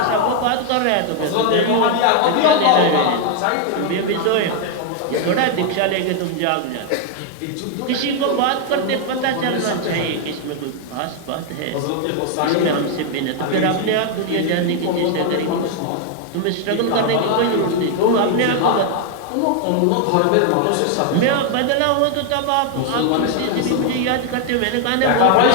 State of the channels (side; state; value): both; different; correlation 0.00